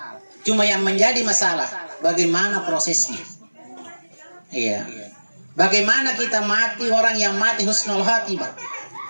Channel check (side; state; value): both; inverted; correlation -1.00